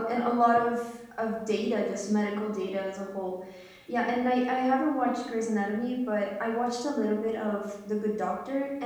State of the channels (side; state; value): both; identical; correlation 1.00